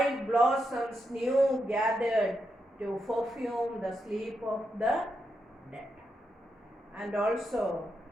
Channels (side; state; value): both; normal; correlation 0.84